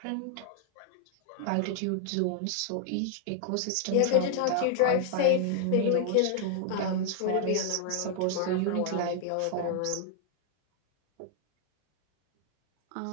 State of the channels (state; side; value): different; both; correlation 0.00